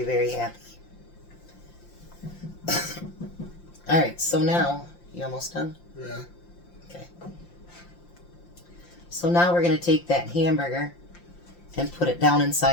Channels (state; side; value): late; right; 5.7 ms